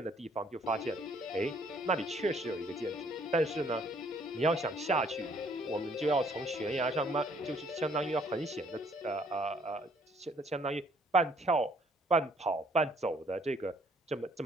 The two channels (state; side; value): normal; both; correlation 0.63